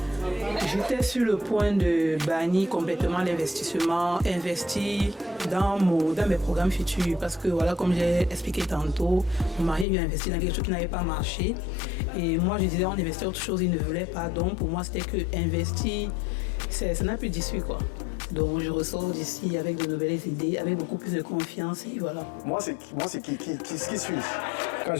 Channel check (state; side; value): drops out; right; at 9.9 s